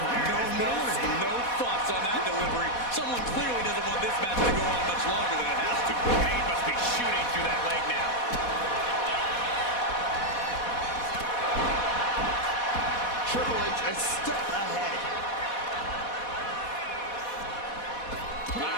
No fuss on that delivery. Someone clearly doesn't want this match to go on much longer than it has to. He must be shooting through that leg now. Triple H a step ahead.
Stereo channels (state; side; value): late; right; 4.1 ms